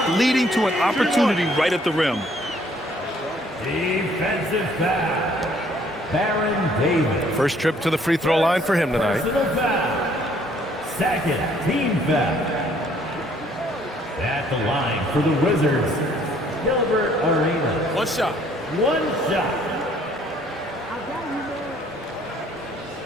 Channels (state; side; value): normal; both; correlation 0.62